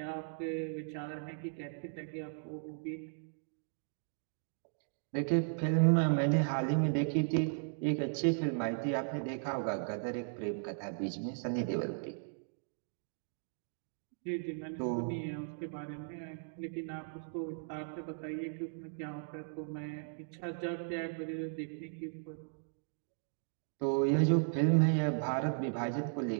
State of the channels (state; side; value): silent; left; digital silence